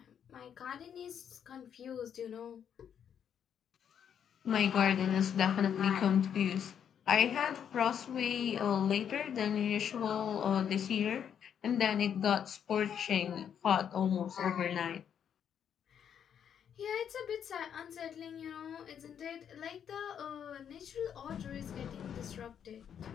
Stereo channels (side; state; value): right; quieter; 8.5 dB